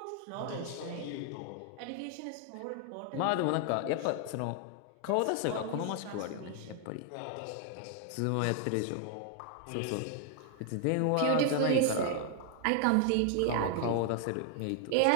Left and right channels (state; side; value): different; both; correlation 0.00